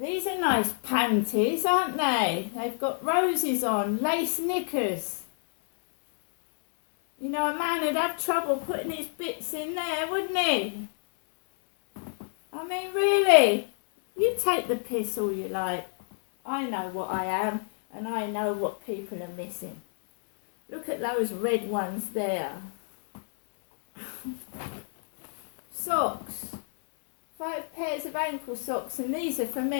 These are nice panties, aren't they? They've got roses on, lace knickers. You know, a man would have trouble putting his bits in there, wouldn't he? I mean, really? You take the piss all you like. I know what I am, and I know what people are missing. Look at those red ones there. Socks. 5 pairs of ankle socks, and these are for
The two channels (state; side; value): silent; right; digital silence